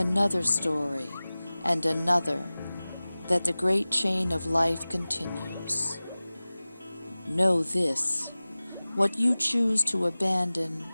story and another, that the great chain of life continues. Know this, what you choose to abandon,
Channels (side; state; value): both; inverted; correlation -0.98